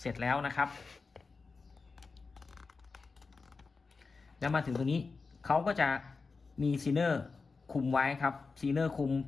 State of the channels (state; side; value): quieter; right; 4.4 dB